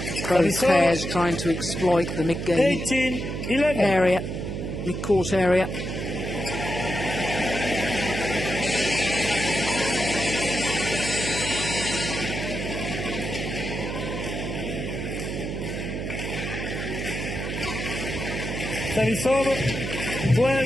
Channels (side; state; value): right; noise; hum, 4 dB below the sound